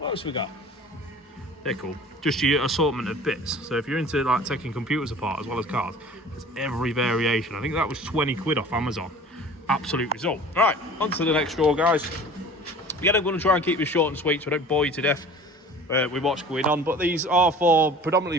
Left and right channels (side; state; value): both; normal; correlation 0.44